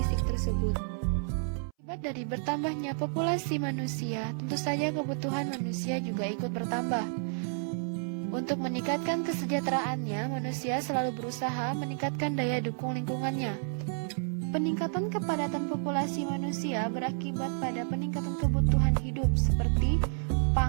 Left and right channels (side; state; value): left; silent; 57 dB below the other